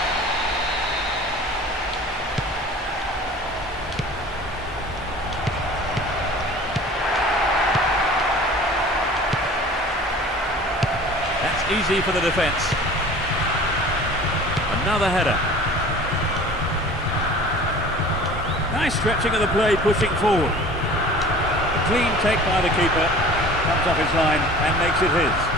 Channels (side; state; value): both; normal; correlation 0.44